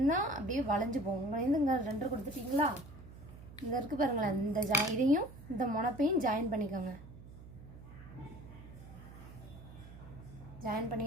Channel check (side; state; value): right; noise; hum, 16 dB below the sound